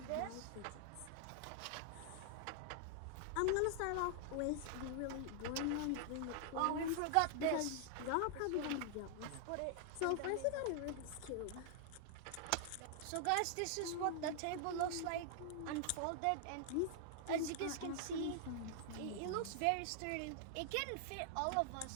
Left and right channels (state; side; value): different; both; correlation 0.00